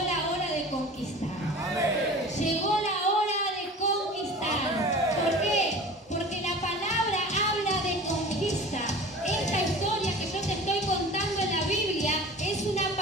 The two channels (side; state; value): both; normal; correlation 0.39